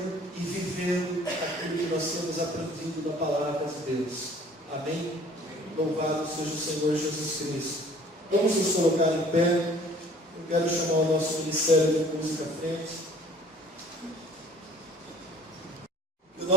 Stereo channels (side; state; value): both; normal; correlation 0.53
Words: e vivendo aquilo que nós temos aprendido da palavra de Deus. Amém? Louvado seja o Senhor Jesus Cristo. Vamos nos colocar em pé. Eu quero chamar o nosso ministério de música à frente. Que o